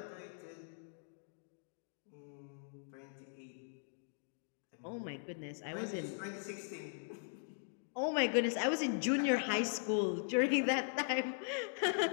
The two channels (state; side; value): silent; right; digital silence